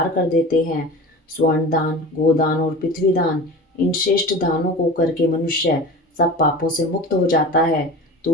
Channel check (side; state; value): both; normal; correlation 0.34